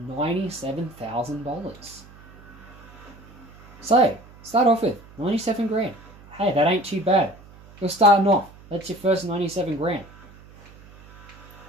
$97,000. So, start off with 97 grand. Hey, that ain't too bad. You're starting off. That's your first 97 grand.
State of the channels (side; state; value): right; noise; hum, 22 dB below the sound